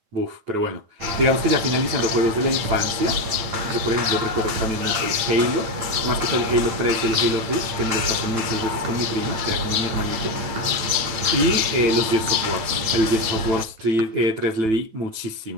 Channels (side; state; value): left; late; 8.9 ms